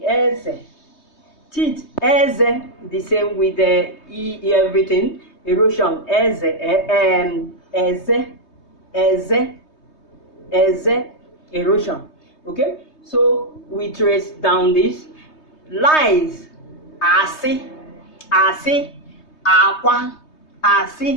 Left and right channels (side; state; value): right; late; 3.2 ms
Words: eze, teeth, eze, the same with the everything. Erosion, eze, erosion. Okay, so we trace down this. Lies, asi, aqua,